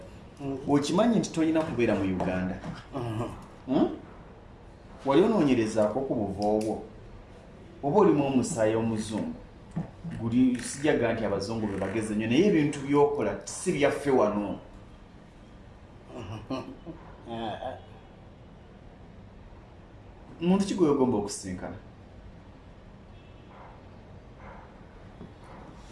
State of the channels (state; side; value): identical; both; correlation 1.00